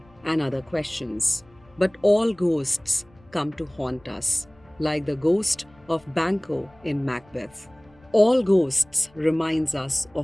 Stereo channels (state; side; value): noise; left; rumble, 29 dB below the sound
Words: and other questions. But all ghosts come to haunt us, like the ghost of Banquo in Macbeth. All ghosts reminds us